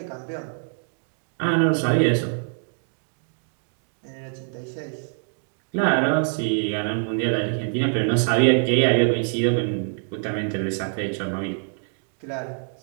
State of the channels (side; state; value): left; silent; 62 dB below the other